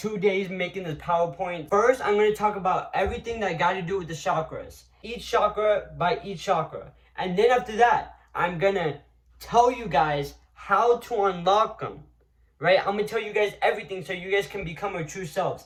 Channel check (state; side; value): identical; both; correlation 1.00